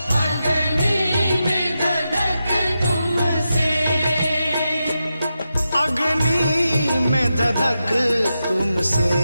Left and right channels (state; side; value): inverted; both; correlation -0.89